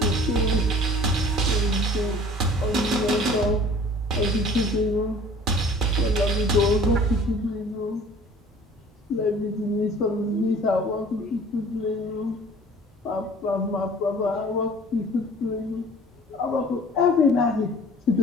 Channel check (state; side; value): normal; both; correlation 0.48